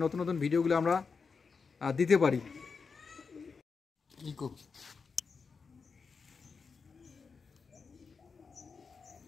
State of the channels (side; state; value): right; quieter; 5.2 dB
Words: নতুন নতুন ভিডিওগুলো আমরা দিতে পারি।